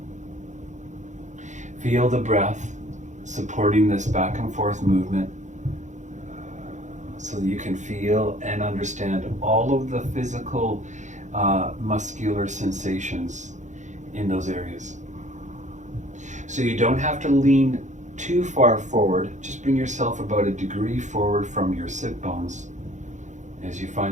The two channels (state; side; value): late; left; 0.35 ms